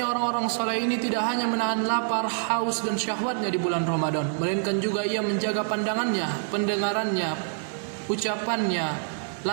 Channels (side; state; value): left; silent; digital silence